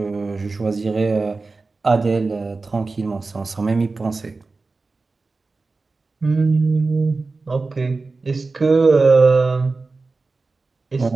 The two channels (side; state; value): left; quieter; 3.8 dB